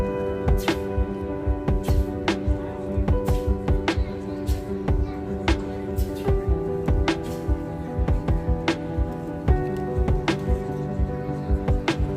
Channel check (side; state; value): both; identical; correlation 1.00